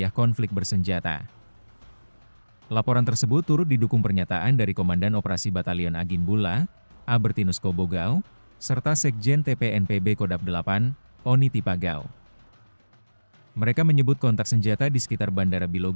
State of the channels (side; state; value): both; inverted; correlation -1.00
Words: konflik bersenjata. Laporan tersebut turut didukung pernyataan dari Komandan Operasi Batalion Agin Bula, Albertinus Kobogau, serta Sekjen TPNPB Kodap 8, Oni Tipagau. Mereka menyebut kontak senjata di sekitar Bandara